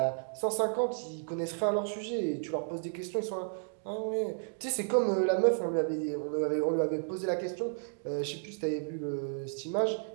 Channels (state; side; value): silent; left; digital silence